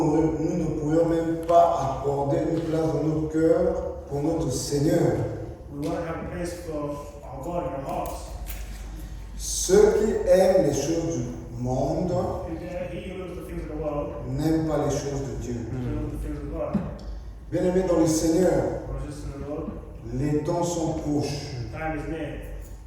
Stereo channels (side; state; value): both; identical; correlation 1.00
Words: pourrions même pas accorder une place dans notre cœur pour notre Seigneur. we won't have a place for our God in our hearts. Ceux qui aiment les choses du monde He who loves the things of the world, n'aiment pas les choses de Dieu. he loves the things of God. Bien-aimés dans le Seigneur, Brothers and sisters in the Lord, les temps sont proches. time is near.